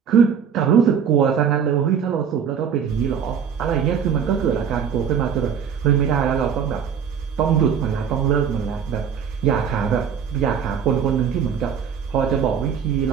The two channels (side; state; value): left; quieter; 7.5 dB